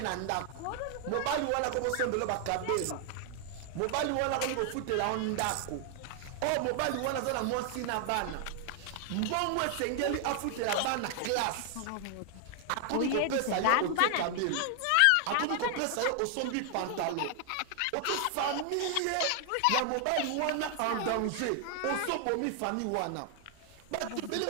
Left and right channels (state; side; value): different; both; correlation 0.00